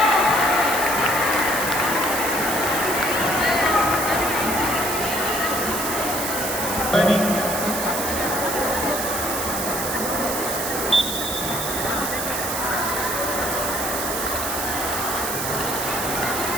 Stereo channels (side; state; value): right; noise; hiss, 3 dB below the sound